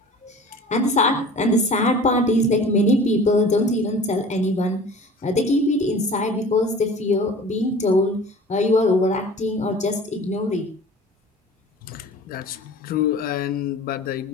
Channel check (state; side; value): normal; both; correlation 0.42